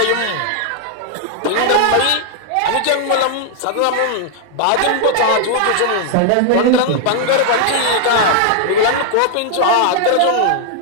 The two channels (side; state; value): both; different; correlation -0.01